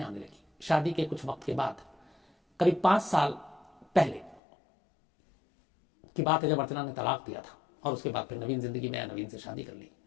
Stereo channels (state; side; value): drops out; right; at 4.4 s